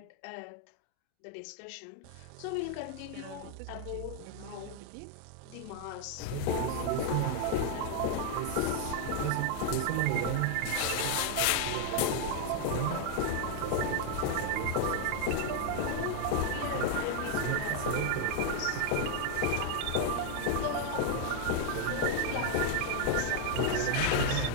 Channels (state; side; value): different; both; correlation 0.00